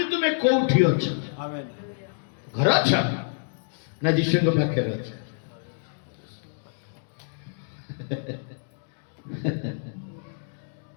ତୁମେ କୋଉଠି ଅଛ? ଘର ଅଛ ନା ଯୀଶୁଙ୍କ ପାଖରେ ଅଛ?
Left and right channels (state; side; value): silent; right; digital silence